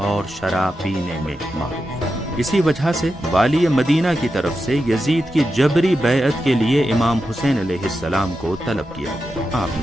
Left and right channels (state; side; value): normal; both; correlation 0.89